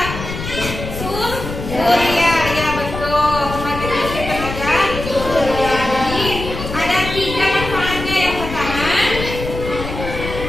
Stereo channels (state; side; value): noise; left; rumble, 7 dB below the sound